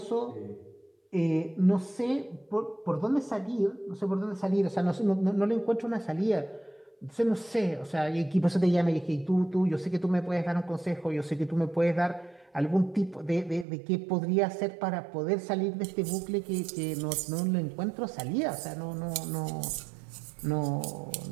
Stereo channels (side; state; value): left; drops out; at 13.7 s